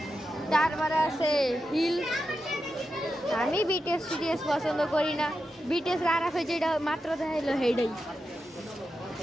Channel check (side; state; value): both; normal; correlation 0.89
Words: তারপরে আছে হিল। আমি বিটিএস পছন্দ করি না, বিটিএস আরাফে যেটা মাত্র দেখাইলো সেইটাই।